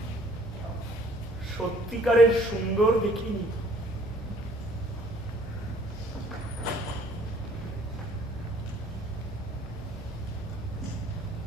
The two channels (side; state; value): both; normal; correlation 0.58